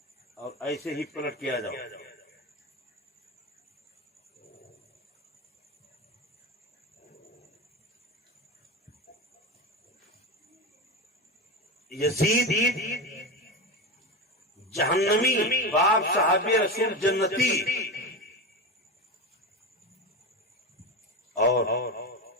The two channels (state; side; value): normal; both; correlation 0.20